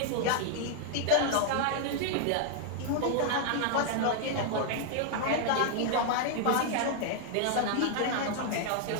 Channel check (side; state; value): both; different; correlation 0.00